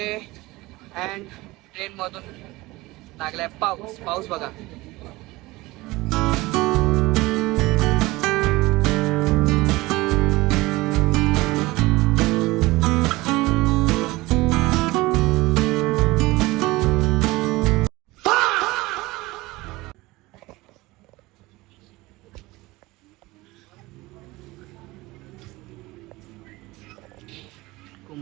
and train मधून लागलाय पाऊस. पाऊस बघा.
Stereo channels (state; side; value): quieter; left; 20.5 dB